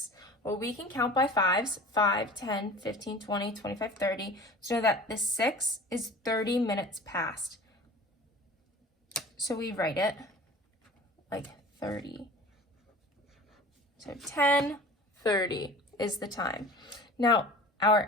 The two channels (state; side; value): normal; both; correlation 0.41